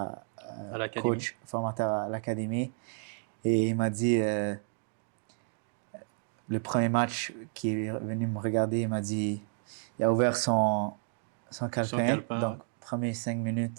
À l'académie. coach, formateur à l'académie. Et il m'a dit, le premier match qui est venu me regarder, il m'a dit, il a ouvert son calepin. Donc, Ouais. premier 5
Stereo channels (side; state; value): left; silent; 57 dB below the other